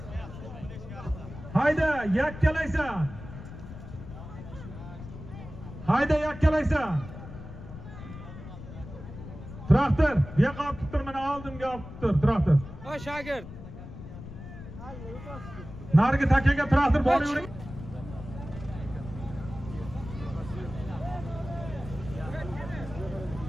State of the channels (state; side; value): noise; left; rumble, 13 dB below the sound